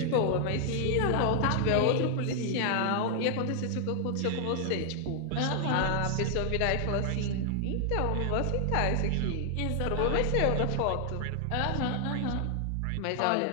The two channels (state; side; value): different; both; correlation 0.00